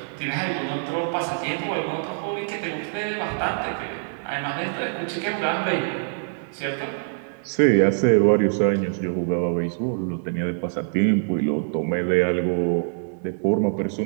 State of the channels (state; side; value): silent; left; digital silence